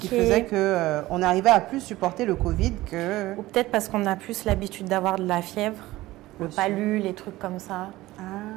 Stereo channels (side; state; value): left; quieter; 17.6 dB